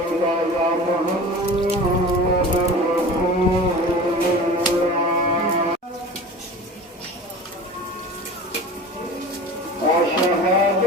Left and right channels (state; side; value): normal; both; correlation 0.37